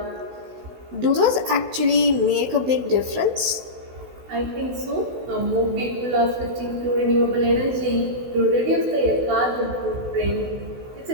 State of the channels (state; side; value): late; left; 16 ms